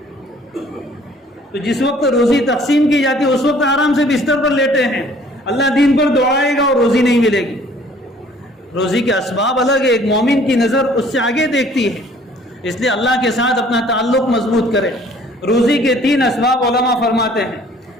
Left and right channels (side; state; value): both; normal; correlation 0.56